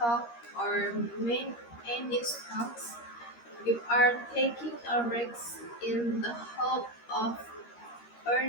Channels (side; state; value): right; late; 13 ms